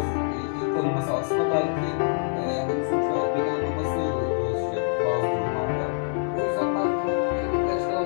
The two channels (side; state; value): right; silent; digital silence